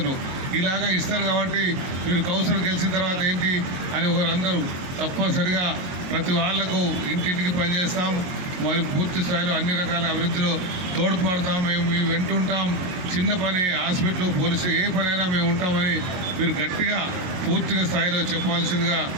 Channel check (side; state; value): left; late; 22 ms